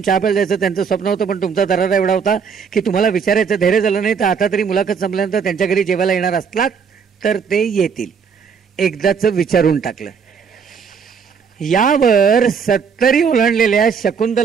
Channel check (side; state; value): left; quieter; 6.2 dB